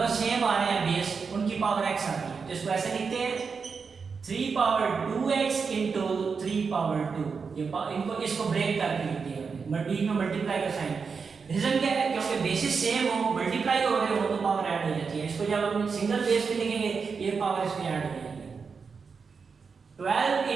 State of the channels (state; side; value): quieter; left; 5.4 dB